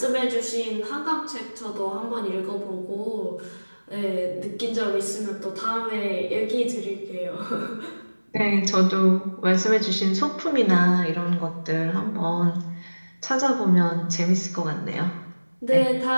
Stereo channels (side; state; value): both; inverted; correlation -1.00